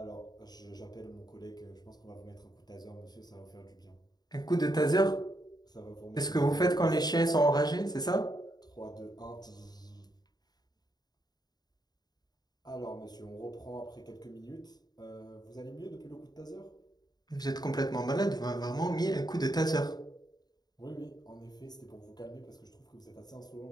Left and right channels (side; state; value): right; late; 0.20 ms